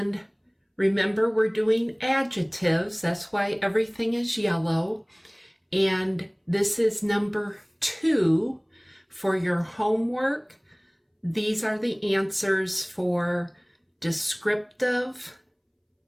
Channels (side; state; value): both; identical; correlation 1.00